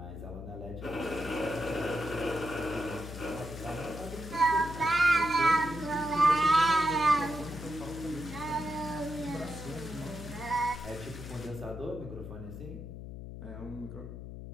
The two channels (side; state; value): left; noise; hum, 10 dB below the sound